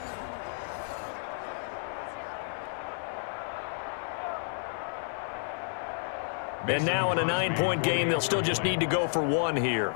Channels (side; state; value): right; silent; 57 dB below the other